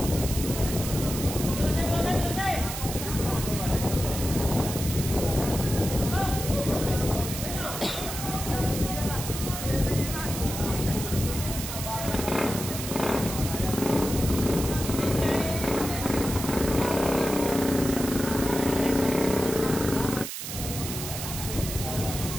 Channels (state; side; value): noise; right; hiss, 7 dB below the sound